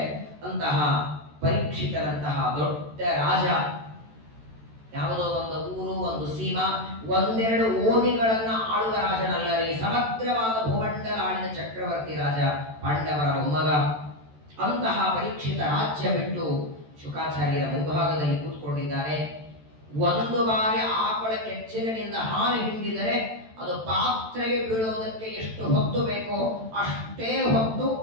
ಅಂತಹ ಪರೀಕ್ಷಿತರಂತಹ ದೊಡ್ಡ ರಾಜ, ಯಾವುದೋ ಒಂದು ಊರು, ಒಂದು ಸೀಮಾ, ಒಂದೆರಡು ಓಣಿಗಳನ್ನ ಆಳುವ ರಾಜನಲ್ಲ ರೀ. ಸಮಗ್ರವಾದ ಭೂಮಂಡಲ ಆಳಿದ ಚಕ್ರವರ್ತಿ ರಾಜ, ಪಾಂಡವರ ಮೊಮ್ಮಗ. ಅಂತಹ ಪರೀಕ್ಷಿತ ರಾಜ್ಯ ಬಿಟ್ಟು ಶುಕಾಚಾರ್ಯರ ಮುಂಭಾಗದಲ್ಲಿ ಕೂತ್ಕೊಂಡಿದ್ದಾನೆ. ಒಂದು ಬಾರಿ ಆಕಳ ಕೆಚ್ಚಲಿನಿಂದ ಹಾಲು ಹಿಂಡಿದರೆ ಅದು ಪಾತ್ರೆಗೆ ಬೀಳೋದಕ್ಕೆ ಎಷ್ಟು ಹೊತ್ತು ಬೇಕೋ ಅಷ್ಟೇ ಹೊತ್ತು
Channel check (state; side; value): late; left; 13 ms